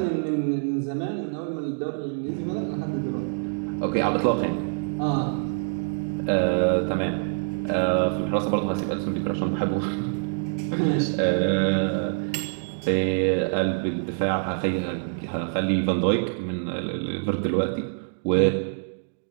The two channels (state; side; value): silent; left; digital silence